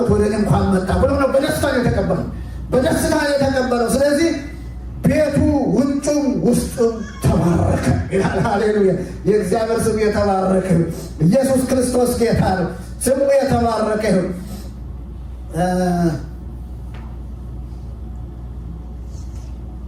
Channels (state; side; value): identical; both; correlation 1.00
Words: ወደ እኔ እንኳን መጣ ብሎ ነው በደስታ ነው የተቀበለው፣ በደስታ ነው የተቀበለው። ስለዚህ ቤቱ ውጩም ውስጡም ተባረከ ይላል። ሃሌሉያ! የእግዚአብሔር ስም የተባረከ። ኢየሱስ ክርስቶስ ጌታ ነው። ስሙ የተባረከ ነው።